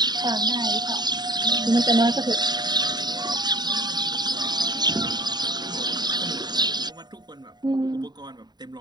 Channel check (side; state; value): left; late; 0.20 ms